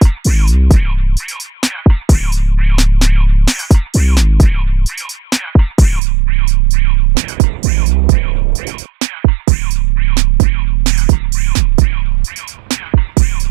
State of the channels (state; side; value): drops out; left; at 6.0 s